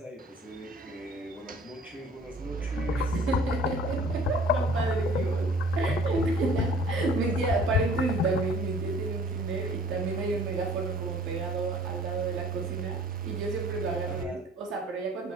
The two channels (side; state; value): both; normal; correlation 0.51